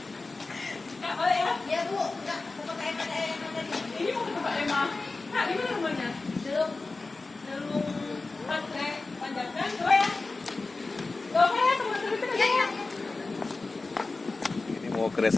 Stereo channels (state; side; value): quieter; right; 3.6 dB